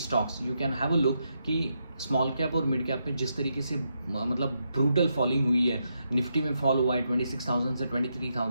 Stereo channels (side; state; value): both; inverted; correlation -0.82